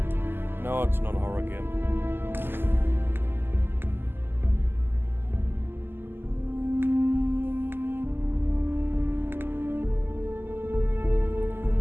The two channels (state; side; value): late; left; 0.10 ms